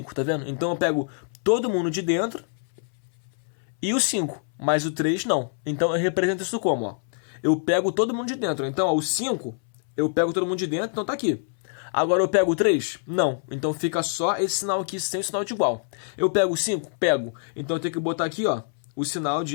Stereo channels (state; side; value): silent; right; 62 dB below the other